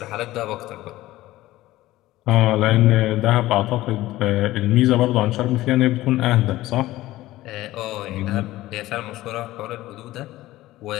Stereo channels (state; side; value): quieter; right; 16.5 dB